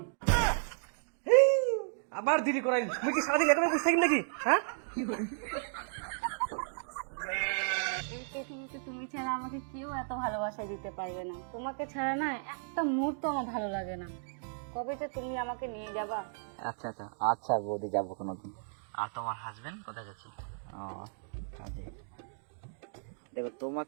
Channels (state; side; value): silent; left; digital silence